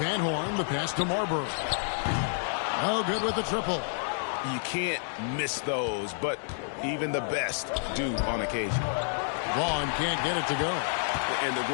Van Horn, the pass to Marbury. Oh, good with the triple. You can't miss those, but even the best do on occasion. Vaughn can't get it to go. And the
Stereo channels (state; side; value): silent; right; digital silence